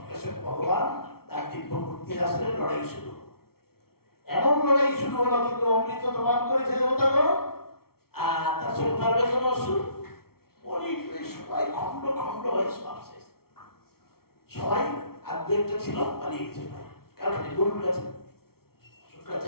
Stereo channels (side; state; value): right; late; 0.94 ms